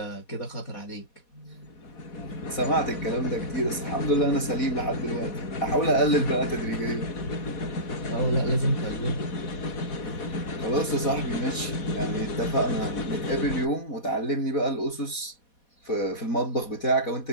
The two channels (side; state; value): right; late; 4.2 ms